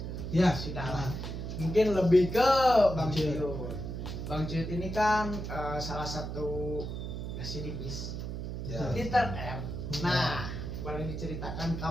Ya sudah lah. Mungkin lebih ke Bang Cuyut. Bang Cuyut ini kan salah satu residivis Titer R. Nah, boleh diceritakan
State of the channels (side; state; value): right; noise; hum, 5 dB below the sound